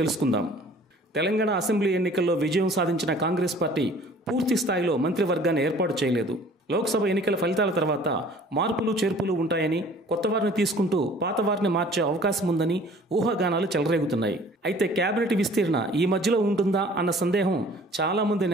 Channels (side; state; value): both; normal; correlation 0.51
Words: తెలుసుకుందాం. తెలంగాణ అసెంబ్లీ ఎన్నికల్లో విజయం సాధించిన కాంగ్రెస్ పార్టీ పూర్తి స్థాయిలో మంత్రివర్గాన్ని ఏర్పాటు చేయలేదు. లోక్సభ ఎన్నికల ఫలితాల తర్వాత మార్పులు చేర్పులు ఉంటాయని, కొత్త వారిని తీసుకుంటూ పాత వారిని మార్చే అవకాశం ఉందని ఊహాగానాలు చెలరేగుతున్నాయి. అయితే కేబినెట్ విస్తీర్ణ ఈ మధ్యలో ఉంటుందా అన్న సందేహం చాలామంది